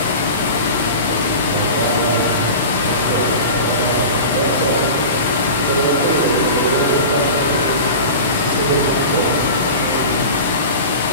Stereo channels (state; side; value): inverted; both; correlation -0.32